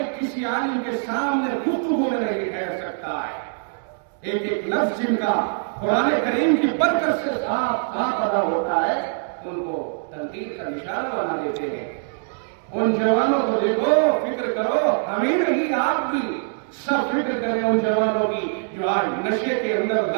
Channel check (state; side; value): silent; left; digital silence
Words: کسی عالم کے سامنے گفتگو میں نہیں ٹھہر سکتا ہے۔ ایک ایک لفظ جن کا قرآن کریم کی برکت سے صاف ادا ہوتا ہے، ان کو تنقید کا نشانہ بنا دیتے ہیں۔ ان جوانوں کو دیکھو، فکر کرو، ہمیں نہیں آپ بھی سب فکر کریں ان جوانوں کی جو آج نشے کے اندر